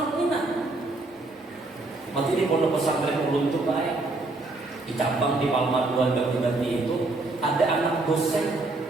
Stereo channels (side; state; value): left; quieter; 3.1 dB